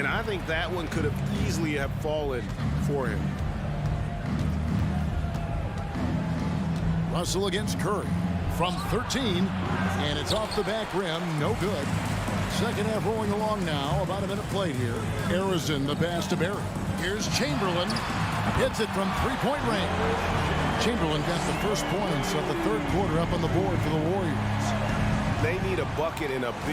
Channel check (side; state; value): both; identical; correlation 1.00